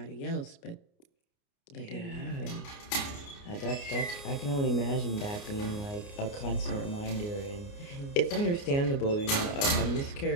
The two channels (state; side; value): late; right; 29 ms